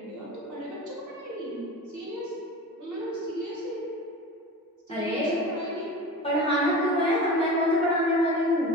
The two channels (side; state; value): both; normal; correlation 0.33